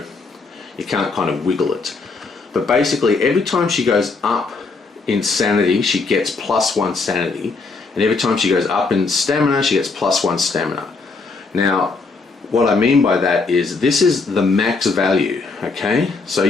you can't kind of wiggle it. But basically, every time she goes up in sanity, she gets +1 sanity. And every time she goes up in stamina, she gets +1 stamina. Now, what I mean by that is this is the max value, okay? So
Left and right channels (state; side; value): quieter; right; 4.1 dB